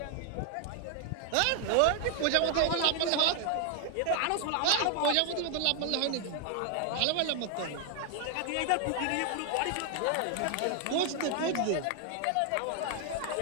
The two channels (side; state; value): both; different; correlation 0.00